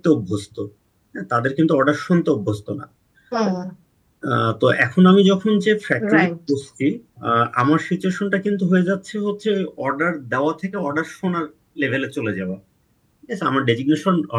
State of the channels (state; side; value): identical; both; correlation 1.00